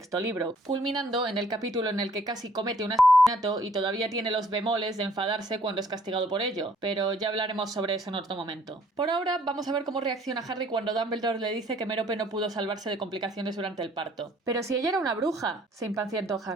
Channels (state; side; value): normal; both; correlation 0.61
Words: libro, culminando en el capítulo en el que casi comete un asesinato y todavía tiene los bemoles de enfadarse cuando es castigado por ello, pero ya hablaremos sobre eso en otro momento. Por ahora vamos a ver cómo reacciona Harry cuando Dumbledore le dice que Merope no pudo salvarse de complicaciones durante el parto. Pero si ella era una bruja, se impacientó